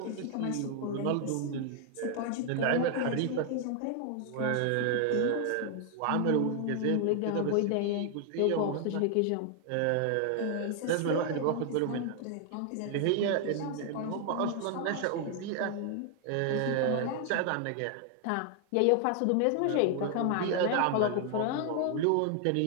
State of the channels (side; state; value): both; different; correlation 0.00